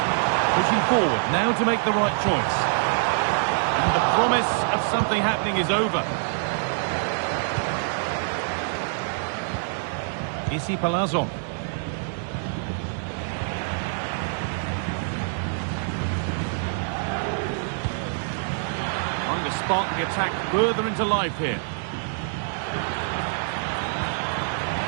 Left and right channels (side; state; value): left; silent; digital silence